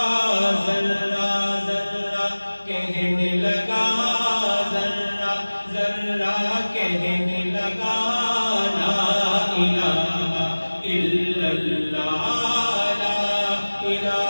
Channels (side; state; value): both; inverted; correlation -1.00